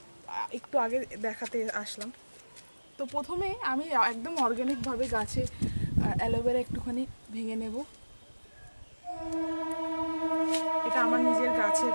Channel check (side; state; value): both; inverted; correlation -1.00